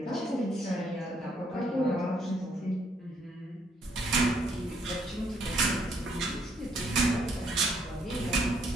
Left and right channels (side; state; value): both; normal; correlation 0.69